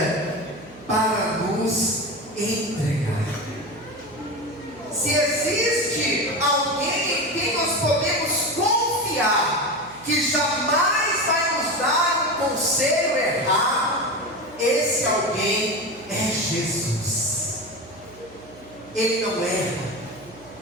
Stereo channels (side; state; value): right; noise; hum, 22 dB below the sound